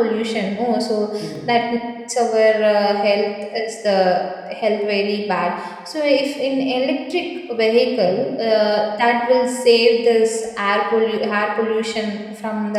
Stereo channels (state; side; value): identical; both; correlation 1.00